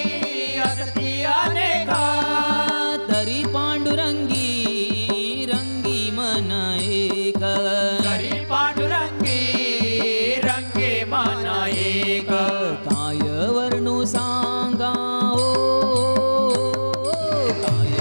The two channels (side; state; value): both; inverted; correlation -1.00